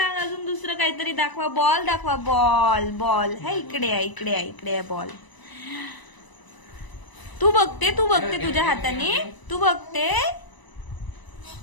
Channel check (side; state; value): right; late; 1.0 ms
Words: अजून दुसरं काहीतरी दाखवा. बॉल दाखवा. बॉल. बॉल है इकडे आहे, इकडे आहे, इकडे आहे बॉल. तू बघते तुझ्या हाताने. तू बघते